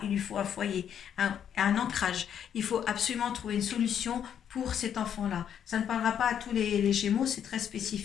il lui faut un foyer, un ancrage. Il faut absolument trouver une solution pour cet enfant-là. Ça ne parlera pas à tous les Gémeaux, c'est très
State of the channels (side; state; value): right; quieter; 8.9 dB